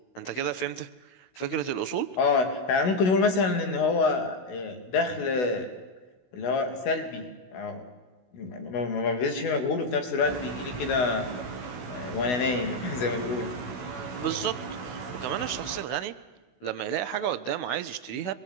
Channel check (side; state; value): right; late; 16 ms